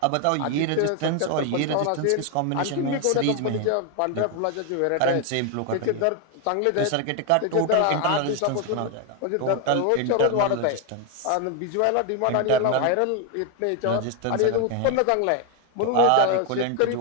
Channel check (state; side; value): different; both; correlation 0.01